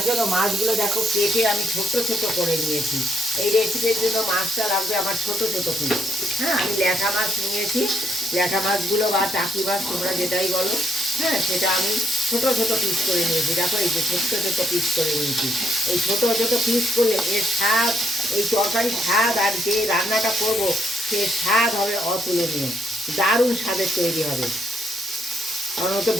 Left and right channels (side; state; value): both; normal; correlation 0.74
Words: জন্য মাছগুলো দেখো কেটে আমি ছোট ছোট করে নিয়েছি। এই রেসিপির জন্য মাছটা লাগবে আমার ছোট ছোট পিস। হ্যাঁ, আমি ল্যাঠা মাছ নিয়েছি। ল্যাঠা মাছগুলো বা টাকি মাছ তোমরা যেটাই বলো, হ্যাঁ, সেটা আমি ছোট ছোট পিস করে নিয়েছি। দেখো এই যে ছোট ছোট পিস করে নিয়েছি। এই ছোট ছোট পিস করলে এর স্বাদ, এই তরকারির স্বাদ আর যে রান্নাটা করব সে স্বাদ হবে অতুলনীয়, দারুণ স্বাদের তৈরি হবে। কারণ ওতে